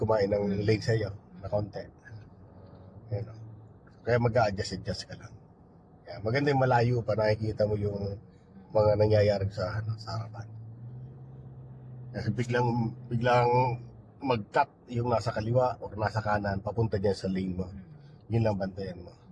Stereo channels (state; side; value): identical; both; correlation 1.00